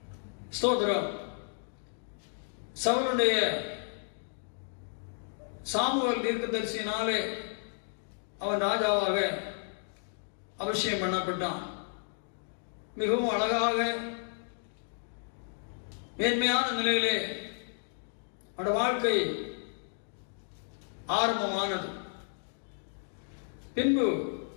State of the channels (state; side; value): silent; right; digital silence